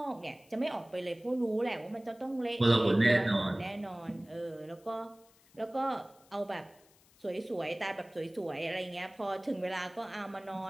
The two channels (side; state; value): left; noise; hiss, 29 dB below the sound